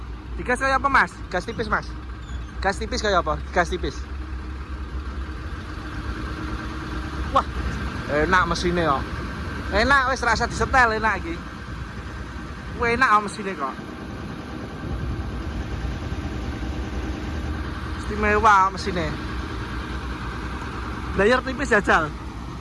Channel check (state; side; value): identical; both; correlation 1.00